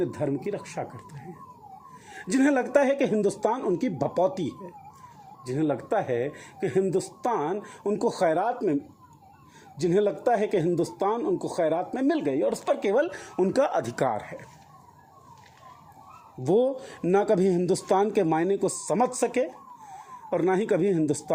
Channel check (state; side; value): identical; both; correlation 1.00